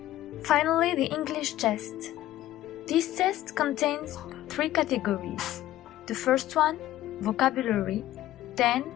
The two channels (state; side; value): quieter; right; 14.3 dB